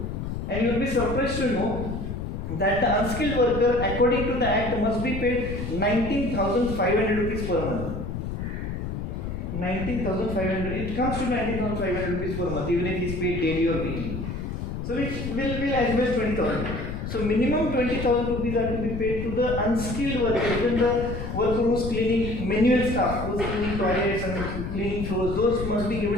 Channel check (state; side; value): noise; left; rumble, 5 dB below the sound